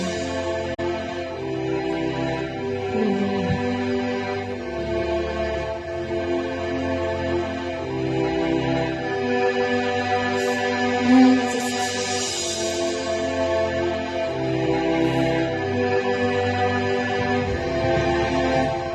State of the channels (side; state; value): both; identical; correlation 1.00